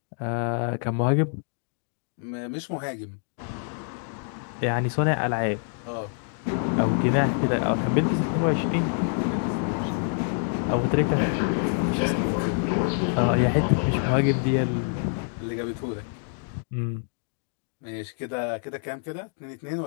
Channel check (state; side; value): silent; right; 61 dB below the other